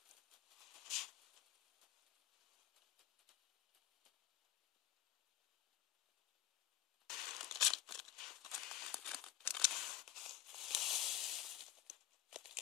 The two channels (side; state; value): right; quieter; 11.7 dB